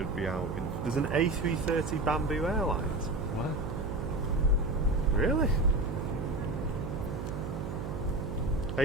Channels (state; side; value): noise; right; hum, 5 dB below the sound